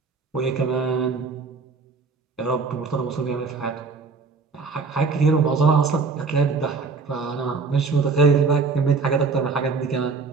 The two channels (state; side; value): quieter; left; 4.6 dB